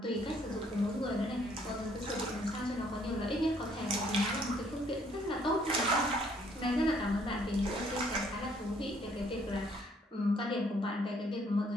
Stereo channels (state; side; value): normal; both; correlation 0.65